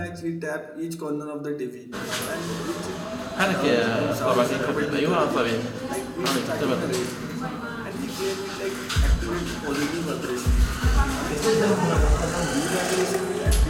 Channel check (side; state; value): both; identical; correlation 1.00